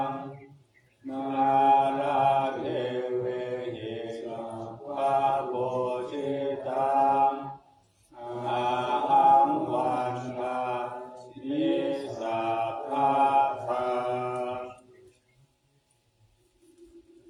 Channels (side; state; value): both; identical; correlation 1.00